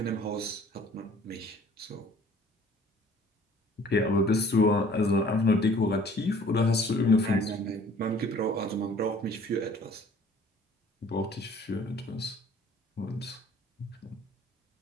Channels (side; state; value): both; normal; correlation 0.53